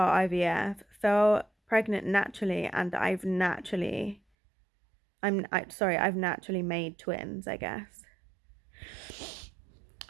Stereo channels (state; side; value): drops out; left; at 4.2 s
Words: IVF, fell pregnant naturally, and I've naturally made twins, I guess.